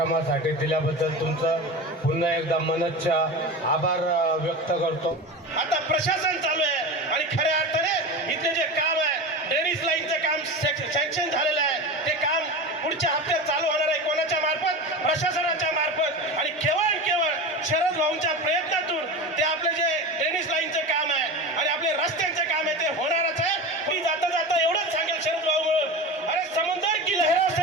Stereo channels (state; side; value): normal; both; correlation 0.27